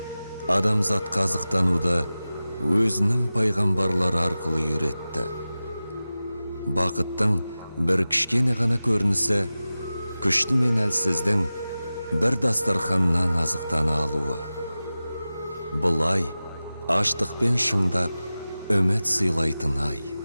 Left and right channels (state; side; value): inverted; both; correlation -0.95